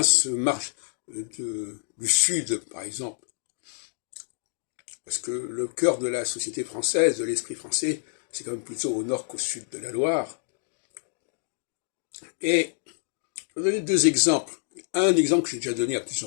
du Sud, par exemple. Parce que le cœur de la société française, de l'esprit français, c'est quand même plutôt au nord qu'au sud de la Loire. Et je vais donner deux exemples. Un exemple que j'ai déjà donné à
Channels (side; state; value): right; silent; digital silence